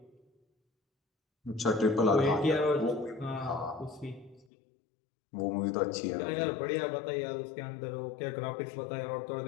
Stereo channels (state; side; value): drops out; right; at 4.5 s